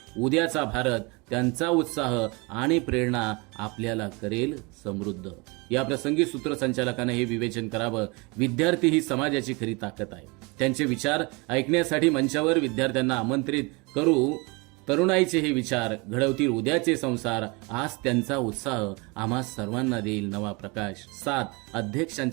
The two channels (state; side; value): quieter; left; 27.9 dB